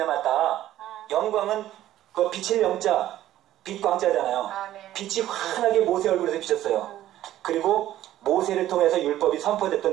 영광은 그 빛의 영자, 빛광자잖아요. 네. 빛이 환하게 모세 얼굴에서 비쳤어요. 그리고 모세를 통해서 율법이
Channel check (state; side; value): quieter; left; 13.4 dB